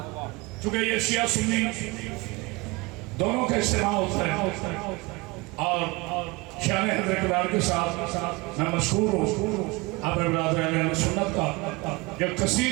چونکہ یہ شیعہ سنی دونوں کا اجتماع ہوتا ہے اور شان حضرت اقتدار کے ساتھ میں مشہور ہوں اپنے برادر اہل سنت کا جو کثیر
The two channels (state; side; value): quieter; left; 24.3 dB